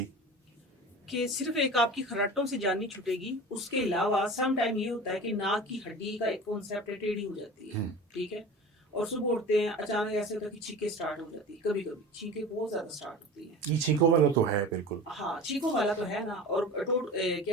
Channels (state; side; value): normal; both; correlation 0.35